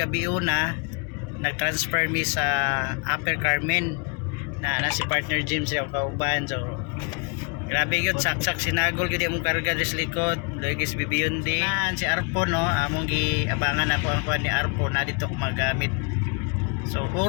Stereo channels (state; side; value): quieter; right; 36.0 dB